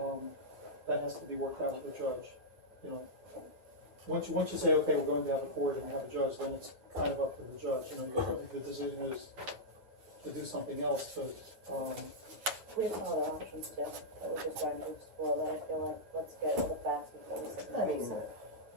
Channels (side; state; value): left; late; 9.3 ms